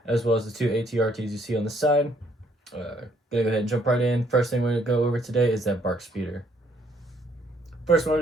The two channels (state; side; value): normal; both; correlation 0.67